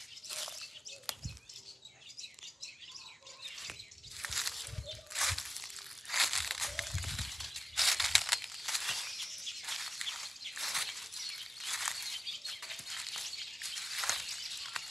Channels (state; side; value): normal; both; correlation 0.96